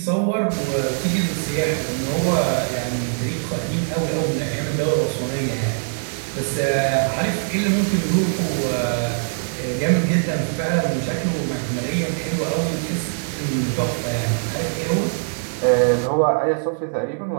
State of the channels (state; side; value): silent; left; digital silence